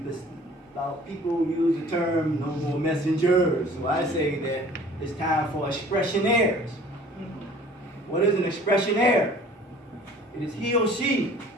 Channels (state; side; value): normal; both; correlation 0.50